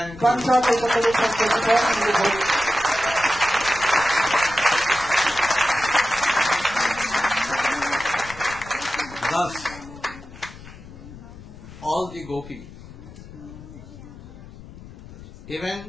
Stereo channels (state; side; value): noise; left; rumble, 17 dB below the sound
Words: you. Thus, all the gopis,